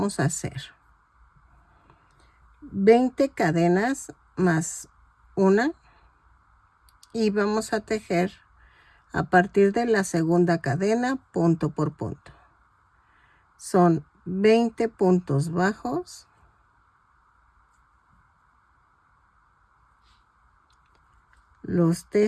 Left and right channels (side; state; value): both; identical; correlation 1.00